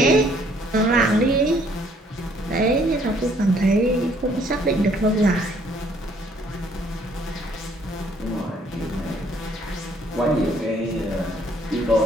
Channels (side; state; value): both; normal; correlation 0.63